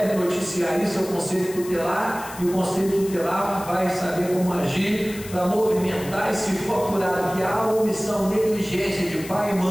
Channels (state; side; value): noise; left; hiss, 15 dB below the sound